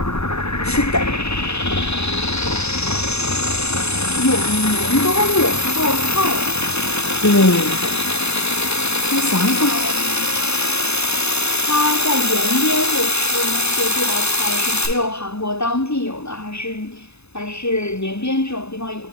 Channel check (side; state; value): right; late; 0.80 ms